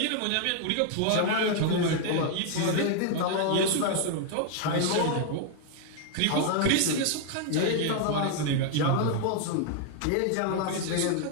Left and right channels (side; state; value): both; different; correlation 0.00